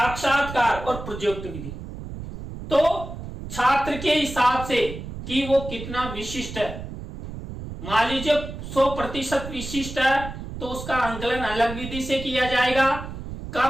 और प्रोजेक्ट विधि। तो छात्र के हिसाब से कि वो कितना विशिष्ट है, मान लीजिए 100% विशिष्ट है तो उसका आंकलन अलग विधि से किया जाएगा।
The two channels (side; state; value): right; noise; rumble, 9 dB below the sound